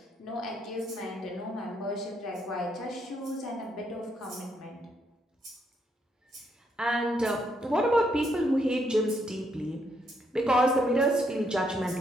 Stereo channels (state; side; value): normal; both; correlation 0.75